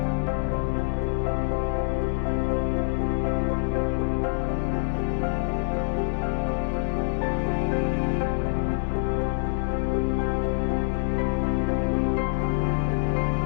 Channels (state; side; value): silent; right; digital silence